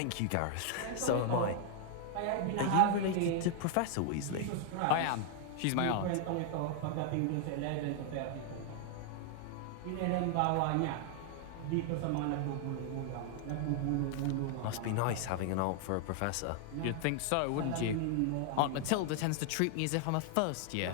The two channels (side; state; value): both; different; correlation 0.00